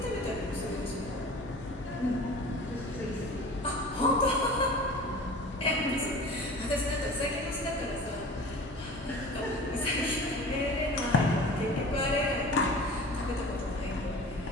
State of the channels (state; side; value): normal; both; correlation 0.40